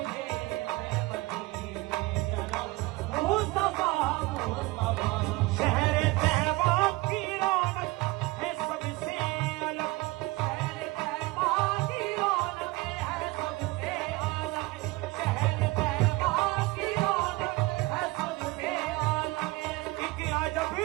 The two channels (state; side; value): quieter; left; 21.7 dB